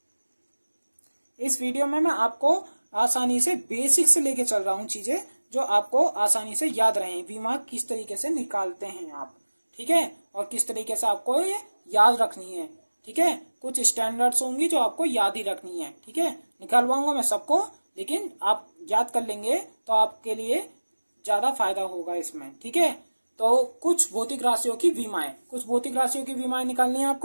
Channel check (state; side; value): inverted; both; correlation -1.00